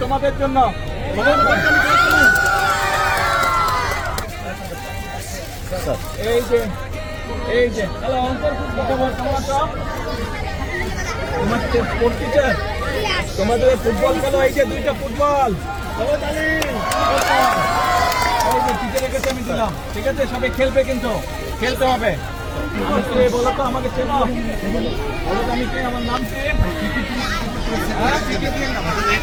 তোমাদের জন্য। এই যে হ্যালো, কেমন আছো? তোমার স্পোর্টস টিচার, তোমাদের ফুটবল খেলো। এই যে দুইটা ফুটবল, টিচারের কাছে আমি দিলাম। ঠিক আছে, সবাই খেলবে, কিন্তু খেলতে হবে। বলো তো, আমাকে চেনো? বলো তো আমি কে, আমার নাম কি?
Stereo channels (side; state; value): both; identical; correlation 1.00